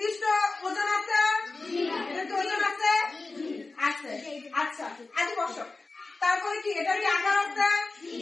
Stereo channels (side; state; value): right; quieter; 3.6 dB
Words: ওজন আছে? ওজন আছে? আছে। আচ্ছা, আগে বসো। তারপরে কি এটার কি আকার আছে,